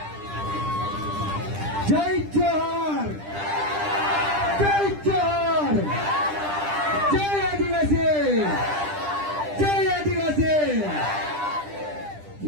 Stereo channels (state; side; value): late; left; 10 ms